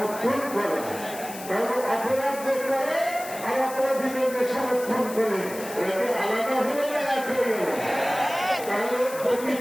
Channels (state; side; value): noise; left; hiss, 13 dB below the sound